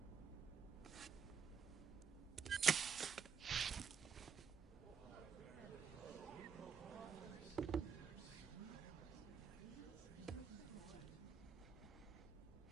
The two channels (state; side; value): quieter; left; 6.9 dB